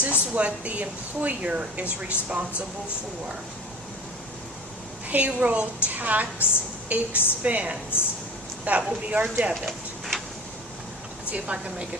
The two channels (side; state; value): both; normal; correlation 0.37